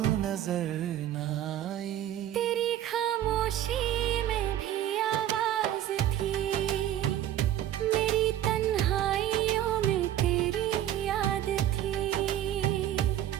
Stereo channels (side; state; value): left; quieter; 11.9 dB